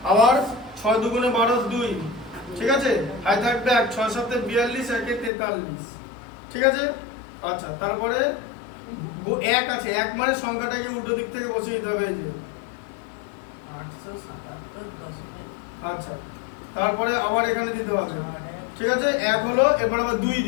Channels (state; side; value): drops out; right; at 5.3 s